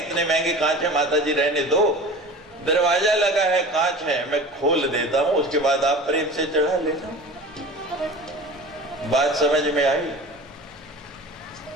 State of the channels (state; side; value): normal; both; correlation 0.37